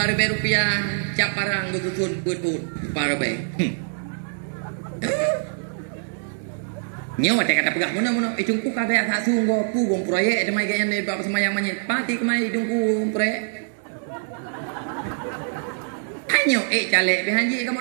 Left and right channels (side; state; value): left; silent; digital silence